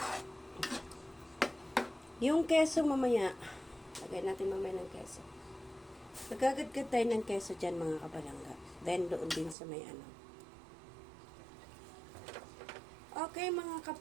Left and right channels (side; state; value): left; drops out; at 9.6 s